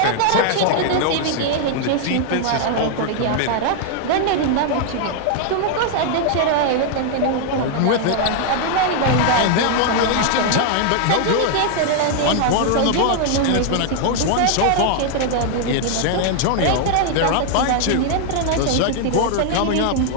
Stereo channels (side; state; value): both; different; correlation 0.00